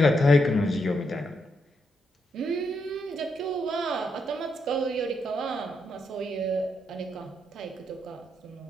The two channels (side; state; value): both; normal; correlation 0.80